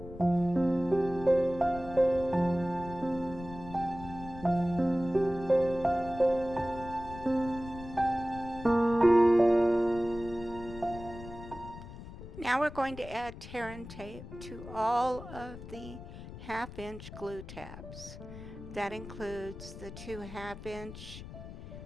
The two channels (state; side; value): noise; left; rumble, 13 dB below the sound